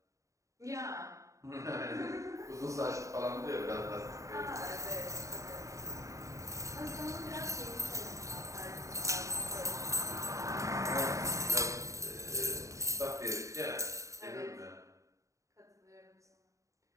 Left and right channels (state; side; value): late; left; 0.15 ms